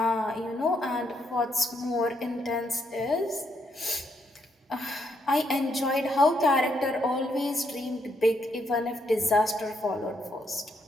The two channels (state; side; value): normal; both; correlation 0.76